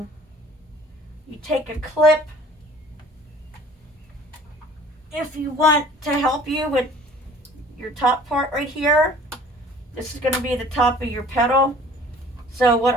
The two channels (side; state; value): both; normal; correlation 0.50